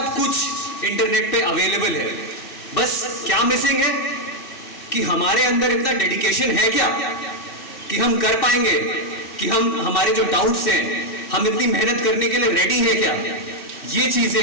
कुछ इंटरनेट पे अवेलेबल है। बस क्या मिसिंग है कि हमारे अंदर इतना डेडिकेशन है क्या कि हम कर पाएंगे, कि हम हमारे जो डाउट्स हैं हम इतनी मेहनत करने के लिए रेडी है क्या। ये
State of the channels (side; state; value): right; late; 2.6 ms